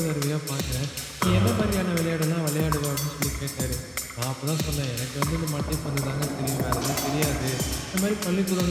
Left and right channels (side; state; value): both; identical; correlation 1.00